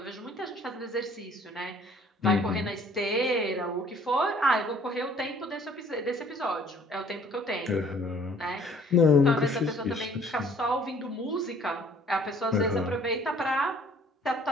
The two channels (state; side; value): normal; both; correlation 0.57